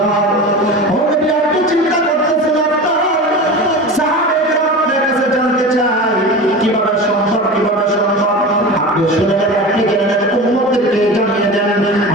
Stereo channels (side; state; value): both; normal; correlation 0.30